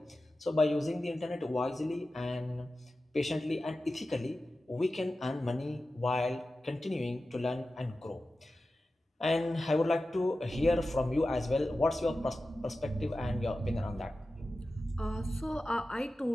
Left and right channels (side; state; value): both; normal; correlation 0.94